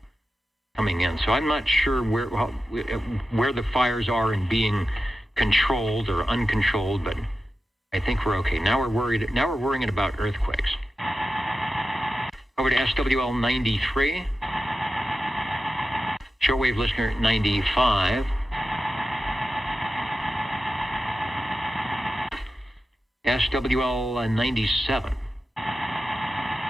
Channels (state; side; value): normal; both; correlation 0.92